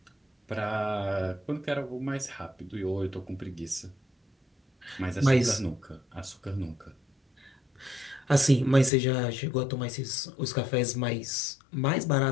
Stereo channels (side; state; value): right; drops out; at 8.9 s